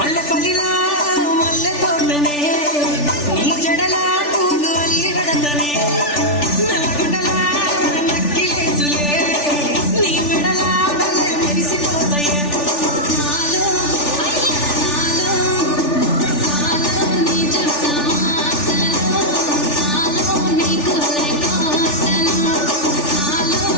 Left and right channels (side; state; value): right; late; 3.4 ms